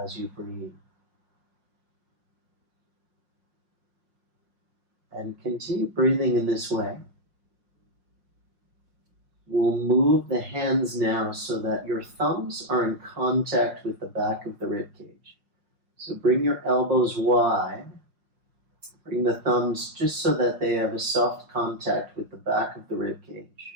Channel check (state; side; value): late; left; 5.6 ms